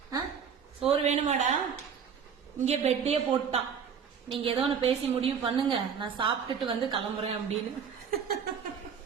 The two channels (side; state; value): left; quieter; 7.0 dB